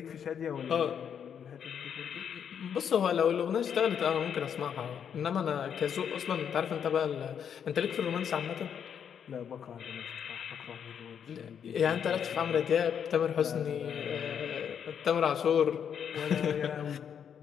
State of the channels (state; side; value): quieter; right; 8.0 dB